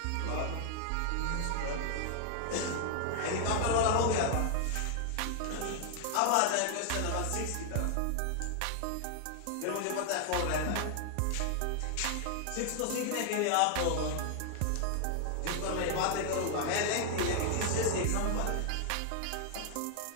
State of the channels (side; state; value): both; different; correlation 0.00